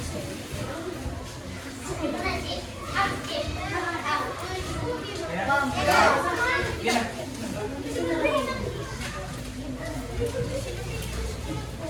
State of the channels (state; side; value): identical; both; correlation 1.00